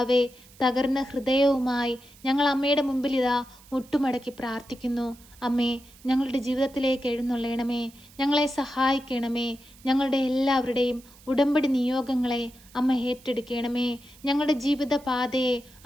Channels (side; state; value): right; noise; hiss, 24 dB below the sound